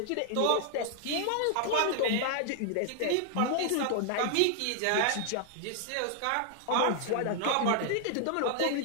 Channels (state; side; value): different; both; correlation 0.00